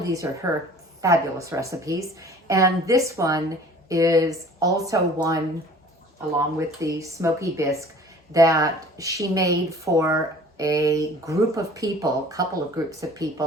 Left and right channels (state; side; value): normal; both; correlation 0.48